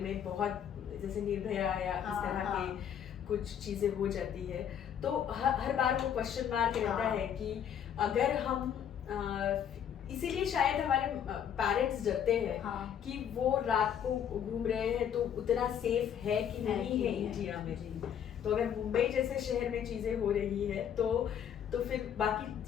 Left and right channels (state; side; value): quieter; right; 8.9 dB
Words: बहुत, जैसे निर्भया या इस तरह के कुछ चीजें हो जाती है, तो हर बार वो क्वेश्चन मार्क रहता है कि अगर हम इसीलिए शायद हमारे पेरेंट्स डरते हैं कि वो रात को घूम रहे हैं तो उतना सेफ है कि नहीं है इंडिया में। तो अगर मुंबई जैसे शहर में चीजें हो रही है तो फिर